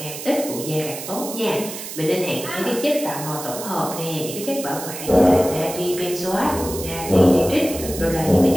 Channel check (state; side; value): noise; right; hiss, 9 dB below the sound